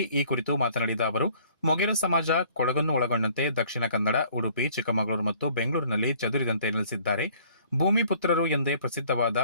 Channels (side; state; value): both; inverted; correlation -0.56